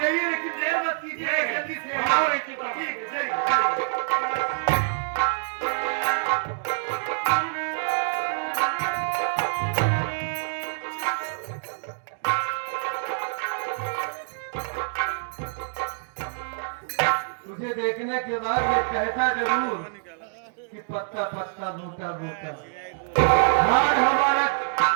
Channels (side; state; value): left; silent; digital silence